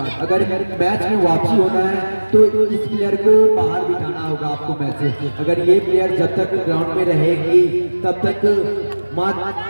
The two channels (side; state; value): both; inverted; correlation -1.00